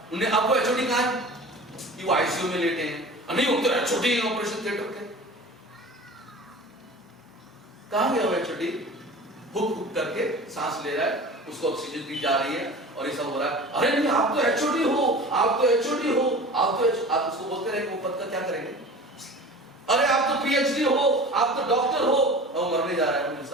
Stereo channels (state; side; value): normal; both; correlation 0.38